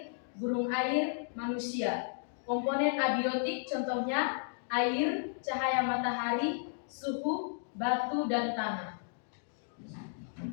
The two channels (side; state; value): right; silent; digital silence